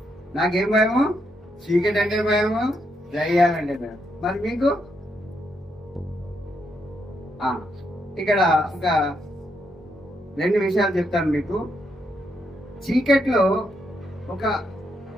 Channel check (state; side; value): normal; both; correlation 0.79